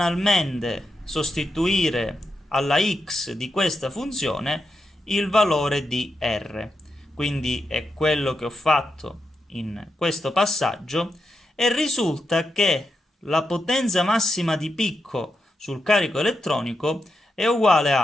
sostituire alla x di questa funzione il valore di r. Quindi è quello che ho fatto in questo passaggio e risulta che la potenza massima di picco sul carico elettronico è uguale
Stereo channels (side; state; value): both; normal; correlation 0.86